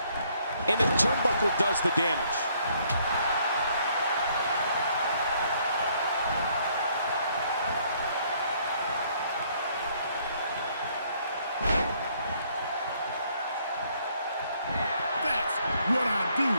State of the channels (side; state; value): both; inverted; correlation -0.66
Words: And the turnbuckle does the damage. That's what I do.